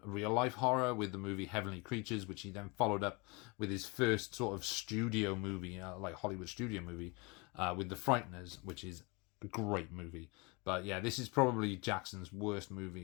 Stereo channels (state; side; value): quieter; right; 28.3 dB